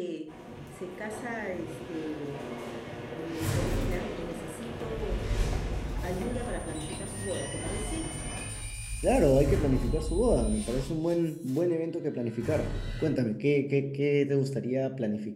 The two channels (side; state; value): both; identical; correlation 1.00